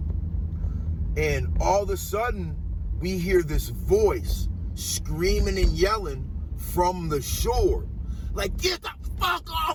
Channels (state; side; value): identical; both; correlation 1.00